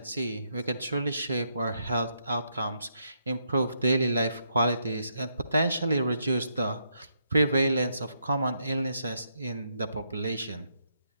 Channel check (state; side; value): inverted; both; correlation -0.77